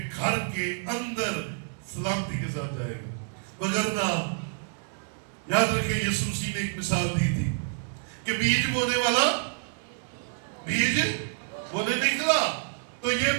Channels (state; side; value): silent; left; 59 dB below the other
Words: گھر کے اندر سلامتی کے ساتھ جائے گا. وگرنہ یاد رکھیں یسوع مسیح نے ایک مثال دی تھی کہ بیج بونے والا بیج بونے نکلا، تو یہ